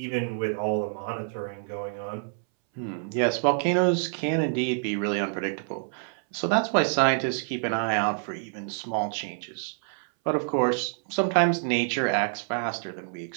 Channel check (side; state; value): left; silent; 60 dB below the other